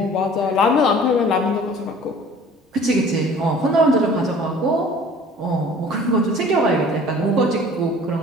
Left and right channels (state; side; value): normal; both; correlation 0.48